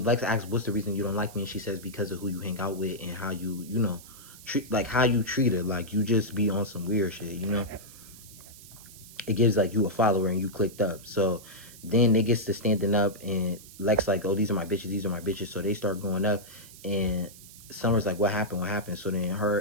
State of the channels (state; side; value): noise; right; hiss, 19 dB below the sound